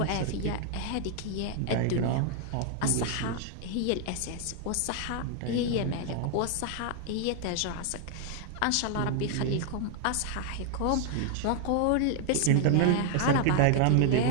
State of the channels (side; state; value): both; different; correlation 0.00